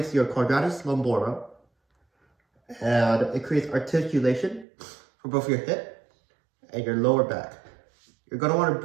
your quadratus lumborum and it creates articulation for both your hip and your lower back. You're gonna wanna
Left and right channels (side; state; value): left; drops out; at 4.7 s